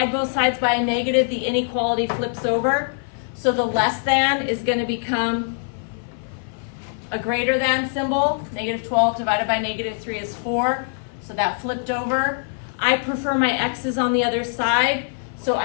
both sides by a negative, the inequality flips over. So the less than is going to become a greater than symbol. -12 divided by -3 is 4. So that flipped over. I prefer my x's on the other side. So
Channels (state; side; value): silent; right; 55 dB below the other